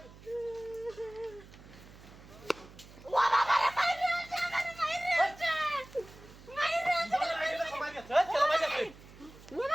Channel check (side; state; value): right; noise; hum, 20 dB below the sound